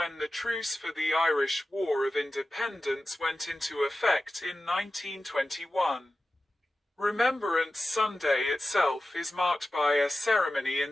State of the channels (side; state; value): both; normal; correlation 0.94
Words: the Truce for the Irish War of Independence went into effect in 1921. Remembrance Sunday itself is marked by a ceremony